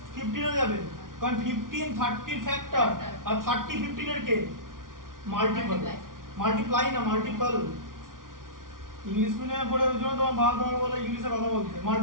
15 হয়ে যাবে, কারণ 15 30 এর ফ্যাক্টর, আর 30 15 এর কে? মাল্টিপল। মাল্টিপ্লাই না, মাল্টিপল। ইংলিশ মিডিয়ামে পড়ে ওই জন্য তোমার বাবা তোমার বলে ইংলিশে কথা বলতে,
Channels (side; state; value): left; late; 0.90 ms